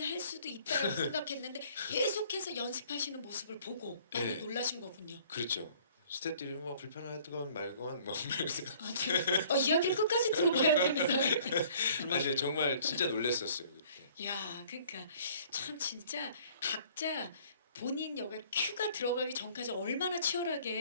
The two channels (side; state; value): both; inverted; correlation -0.56